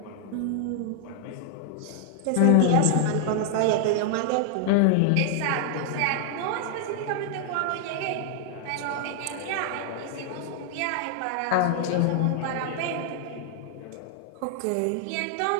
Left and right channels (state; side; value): different; both; correlation 0.00